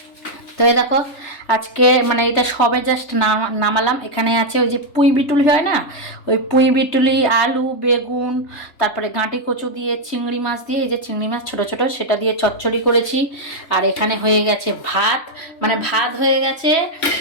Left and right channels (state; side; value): late; right; 3.2 ms